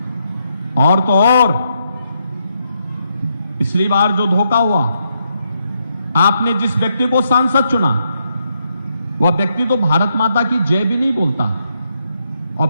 और तो और पिछली बार जो धोखा हुआ, आपने जिस व्यक्ति को सांसद चुना वह व्यक्ति तो भारत माता की जय भी नहीं बोलता, और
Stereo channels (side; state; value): both; inverted; correlation -0.79